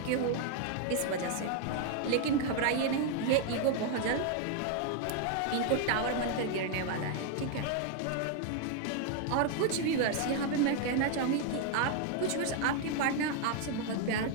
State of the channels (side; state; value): both; different; correlation 0.00